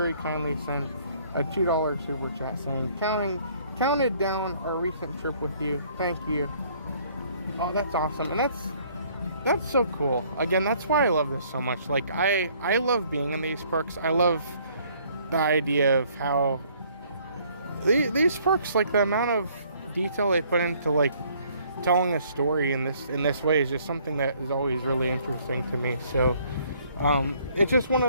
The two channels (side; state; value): both; inverted; correlation -0.61